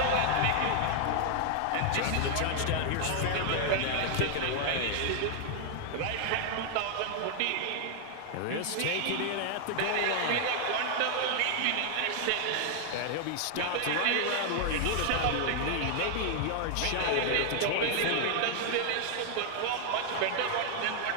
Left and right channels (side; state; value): both; different; correlation 0.00